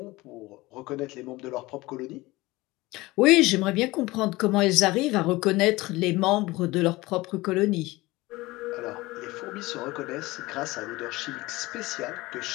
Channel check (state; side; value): quieter; right; 20.5 dB